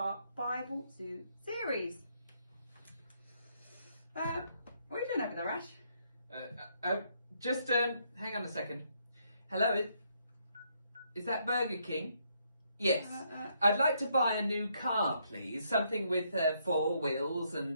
Bible Zoo series. What are you doing over there, Ash? Just hang on a second. Hello, is that Burger King? Yes. I'd like to buy a new car, please. Something with 4 wheels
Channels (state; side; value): inverted; both; correlation -0.73